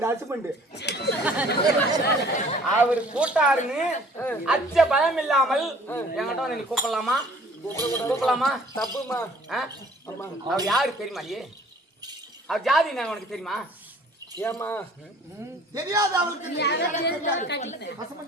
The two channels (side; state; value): both; normal; correlation 0.53